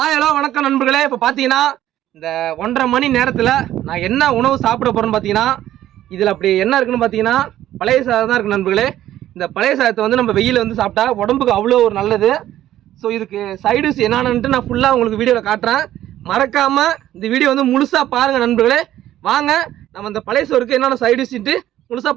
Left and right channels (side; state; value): left; quieter; 13.0 dB